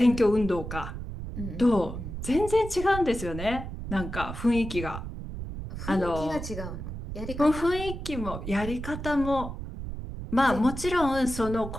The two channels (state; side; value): noise; right; rumble, 8 dB below the sound